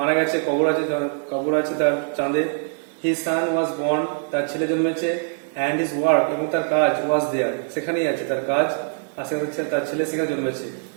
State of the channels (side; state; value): left; silent; digital silence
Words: গেছে, কবর আছে তার চাঁদে। হিজ সান ওয়াজ বর্ন, তার ছেলে জন্মেছে। অ্যান্ড হিজ ওয়ার্ক, এবং তার কাজ, ওয়াজ দেয়ার, সেখানেই আছে তার কাজ, আর তার ছেলে সেখানে জন্মেছে।